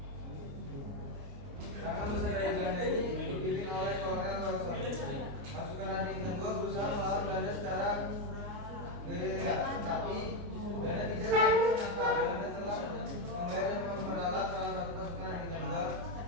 Serangan besar dari Belanda ini dipimpin oleh Kolonel Wilson. Pasukan Adik Tenggo berusaha melawan Belanda secara gerilya, tetapi Belanda tidak Belanda telah menggait dan memperalat salah satu pasukan dari Bintang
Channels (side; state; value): left; late; 29 ms